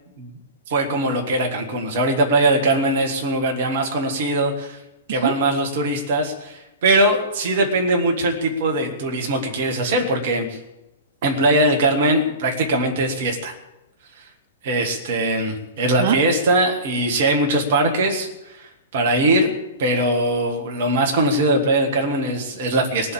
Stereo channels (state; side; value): inverted; both; correlation -0.32